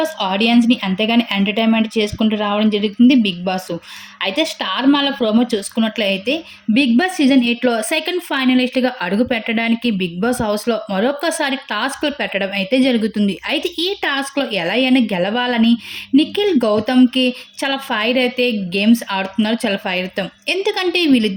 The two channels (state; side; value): identical; both; correlation 1.00